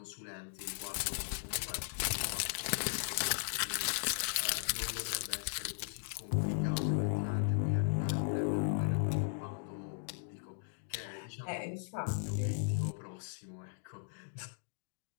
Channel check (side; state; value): right; silent; digital silence